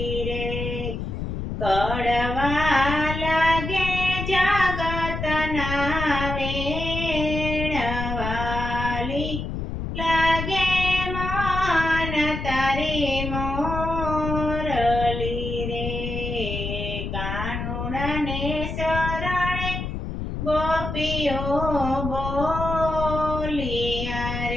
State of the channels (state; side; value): noise; left; rumble, 4 dB below the sound